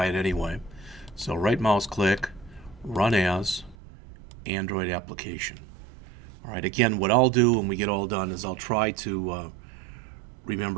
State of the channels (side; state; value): left; drops out; at 3.8 s